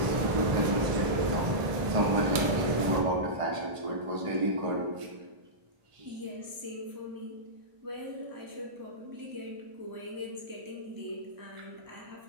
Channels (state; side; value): late; left; 1.7 ms